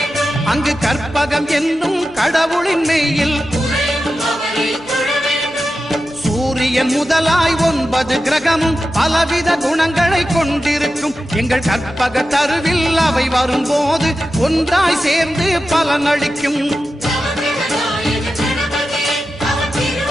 அங்கு கற்பகம் என்னும் கடவுளின் மெய்யில். சூரியன் முதலாய் 9 கிரகமும் பலவித குணங்களை கொண்டிருக்கும். எங்கள் கற்பக தருவில் அவை வரும்போது ஒன்றாய் சேர்ந்து பலனளிக்கும்.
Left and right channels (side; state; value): right; noise; hum, 23 dB below the sound